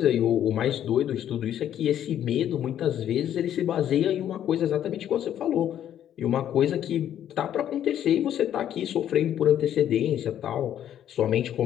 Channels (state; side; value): quieter; right; 10.6 dB